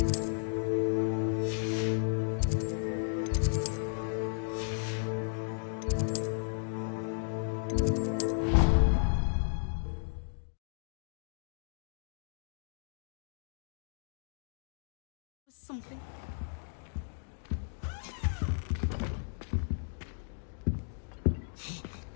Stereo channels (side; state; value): right; silent; digital silence